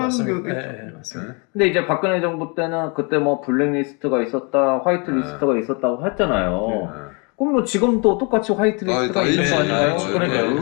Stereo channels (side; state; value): right; quieter; 33.0 dB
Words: 게 맞습니다. 근데 이제 박근혜 정부 때는 그때 뭐 블랙리스트가 있었다, 화이트리스트가 있었다고 했잖아요. 그럼 뭐 지금도 똑같이 화이트리스트가 있는 거 아닌가요?